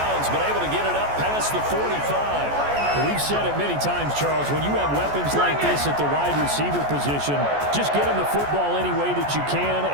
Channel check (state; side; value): late; left; 14 ms